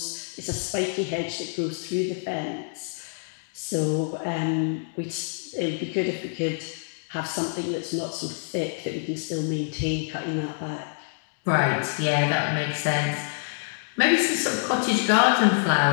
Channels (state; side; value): silent; right; digital silence